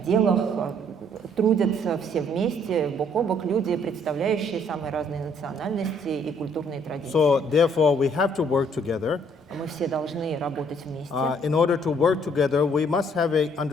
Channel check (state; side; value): normal; both; correlation 0.64